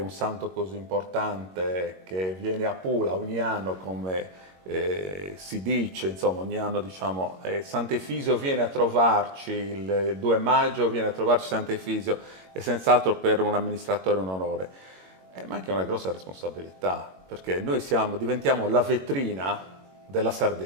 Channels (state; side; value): late; left; 21 ms